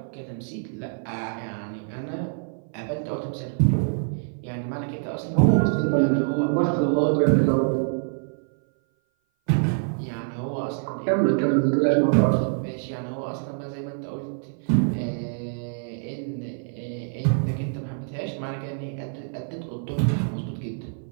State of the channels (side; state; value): left; silent; 57 dB below the other